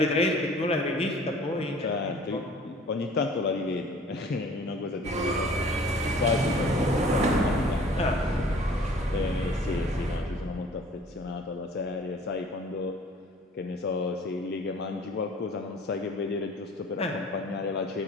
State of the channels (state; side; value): normal; both; correlation 0.50